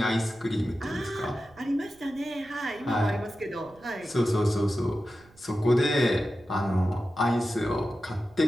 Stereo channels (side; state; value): right; noise; rumble, 27 dB below the sound